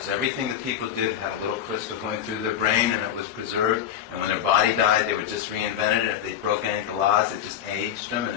everything that people did had a little crystal going through their brain and it was preserved. And when their body died, they were just reinvented. And if they broke any of the laws, it just aged them. And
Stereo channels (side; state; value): right; quieter; 9.9 dB